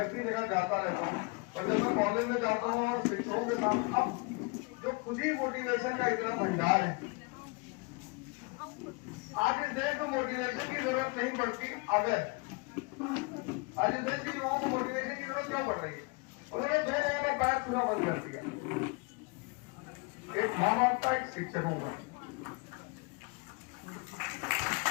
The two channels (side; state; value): right; quieter; 29.3 dB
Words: इसी जगह जाता रहता हूँ और जब मैं कॉलेज में जाता हूँ और शिक्षकों के साथ, अब जो खुद ही मोटिवेशन का इतना भंडार है, आज इस देश में मोटिवेशन की जरूरत नहीं पड़ती। अगर आज इस देश के युवाओं को मोटिवेशन की जरूरत क्यों पड़ रही है? उन्होंने दो लोगों का पैर छूना बंद कर दिया, एक माँ बाप का, एक शिक्षकों का।